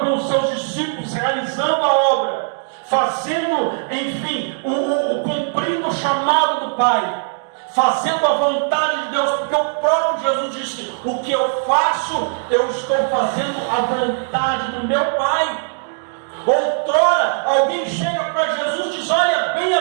com os seus discípulos realizando a obra, fazendo, cumprindo o chamado do Pai, fazendo a vontade de Deus, porque o próprio Jesus disse: o que eu faço, eu estou fazendo a vontade do meu Pai. Outrora, alguém chega para Jesus e diz: olha,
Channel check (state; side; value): silent; left; digital silence